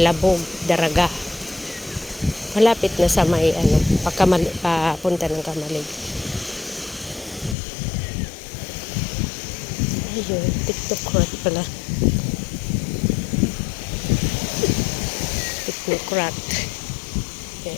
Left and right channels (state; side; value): drops out; right; at 7.6 s